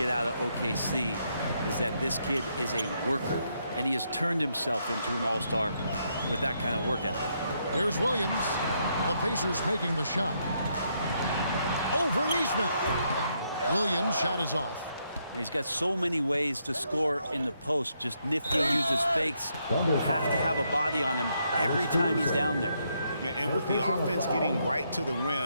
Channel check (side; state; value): both; inverted; correlation -0.76